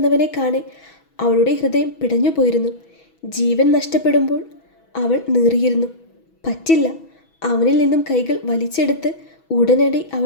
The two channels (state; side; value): late; right; 6.2 ms